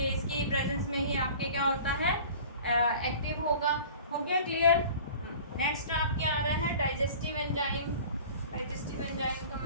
इसकी प्रेजेंस में ही आपके क्या होता है? एक्टिव होगा। हो गया क्लियर। नेक्स्ट आपके आ रहा है डाइजेस्टिव एंजाइम। डाइजेस्टिव एंजाइम को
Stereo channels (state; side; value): inverted; both; correlation -0.43